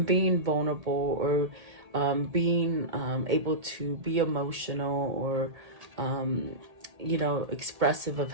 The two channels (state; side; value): late; left; 1.8 ms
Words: being vulnerable, or being able to be emotional, or you know, expressive of